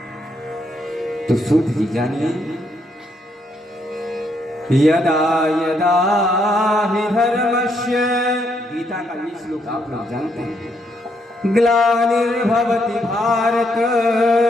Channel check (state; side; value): normal; both; correlation 0.75